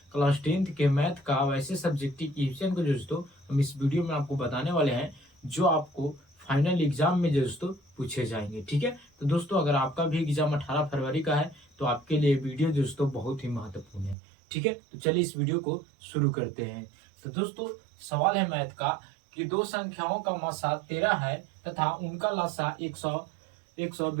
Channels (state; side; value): drops out; left; at 14.2 s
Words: क्लास 10th के मैथ का वैसे सब्जेक्टिव क्वेश्चन को दोस्तों हम इस वीडियो में आपको बताने वाले हैं जो आपको फाइनल एग्जाम में दोस्तों पूछे जाएंगे। ठीक है, तो दोस्तों अगर आपका भी एग्जाम 18 फरवरी का है तो आपके लिए वीडियो दोस्तों बहुत ही महत्वपूर्ण है। ठीक है, तो चलिए इस वीडियो को शुरू करते हैं। तो दोस्तों सवाल है मैथ का कि दो संख्याओं का मासा 13 है तथा उनका लासा